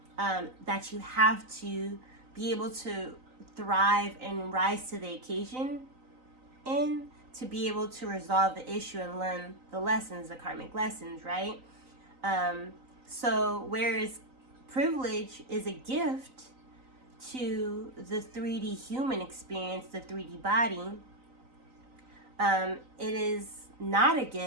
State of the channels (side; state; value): left; late; 3.9 ms